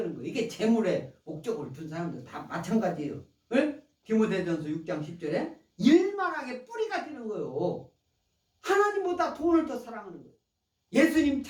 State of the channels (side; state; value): both; identical; correlation 1.00